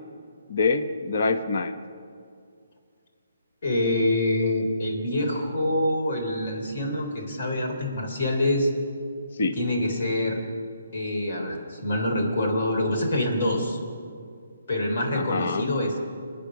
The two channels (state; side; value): inverted; both; correlation -0.71